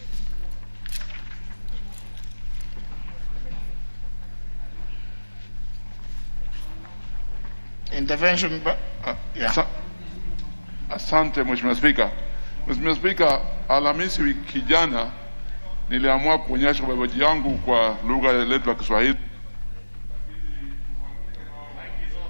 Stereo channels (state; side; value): inverted; both; correlation -1.00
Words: Intervention, yeah. Asante Mheshimiwa Spika. Mheshimiwa Spika, Alhamisi wiki jana niliamua kuonyesha ubabaji yangu kwa lugha yetu ya Kiswahili.